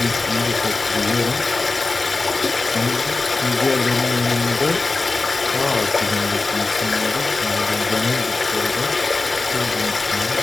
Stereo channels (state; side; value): quieter; right; 3.6 dB